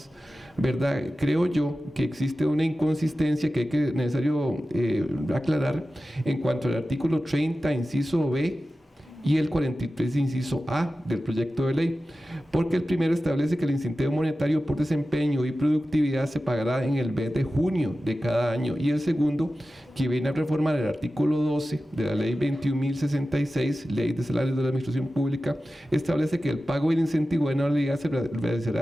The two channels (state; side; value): normal; both; correlation 0.94